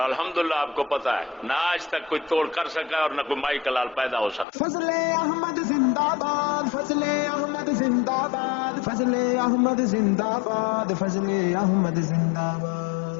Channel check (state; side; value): drops out; right; at 4.5 s